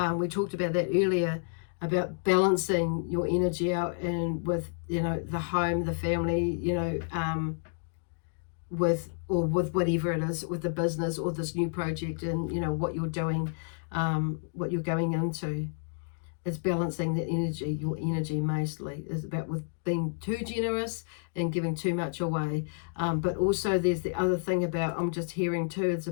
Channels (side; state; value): right; silent; digital silence